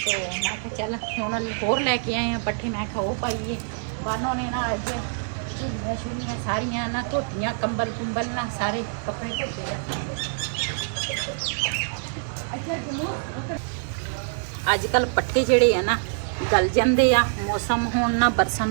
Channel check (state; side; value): silent; left; digital silence